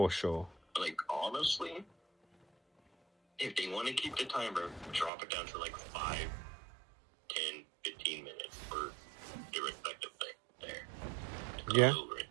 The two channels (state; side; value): drops out; left; at 5.1 s